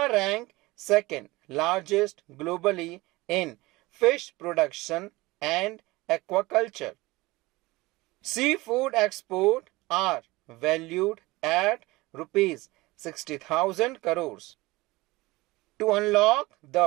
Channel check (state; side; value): quieter; left; 21.0 dB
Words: ranked second largest globally in fish production and aquaculture. Seafood exports are valued at rupees 60,000 crores. To unlock